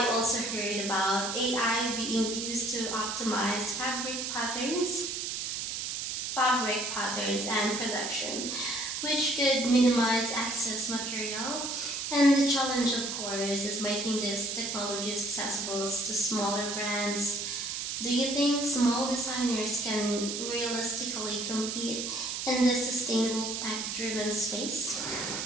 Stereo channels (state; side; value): noise; right; hiss, 3 dB below the sound